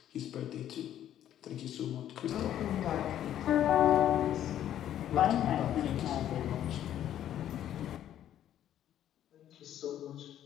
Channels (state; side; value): quieter; right; 11.2 dB